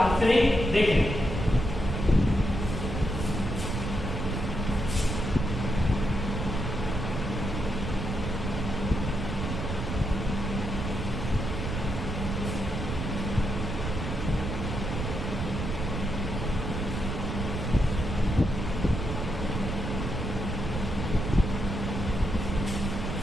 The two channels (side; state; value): right; noise; rumble, 3 dB below the sound